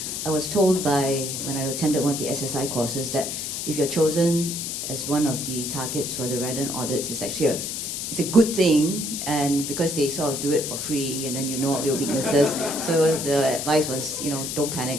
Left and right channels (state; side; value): noise; left; hiss, 4 dB below the sound